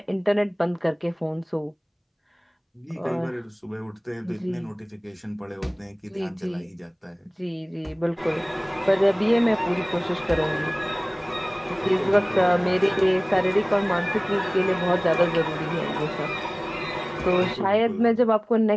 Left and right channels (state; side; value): identical; both; correlation 1.00